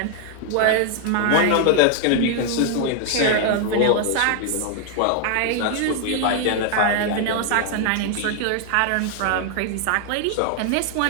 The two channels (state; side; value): different; both; correlation 0.00